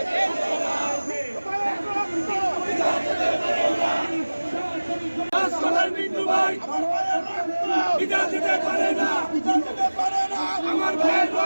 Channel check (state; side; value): inverted; both; correlation -1.00